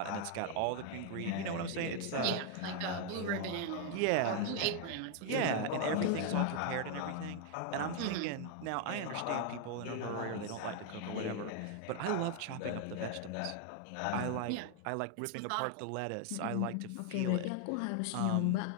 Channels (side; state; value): both; different; correlation 0.00